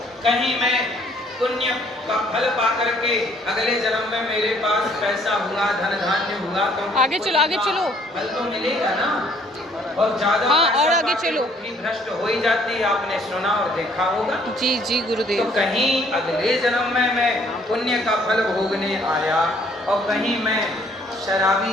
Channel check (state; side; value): normal; both; correlation 0.62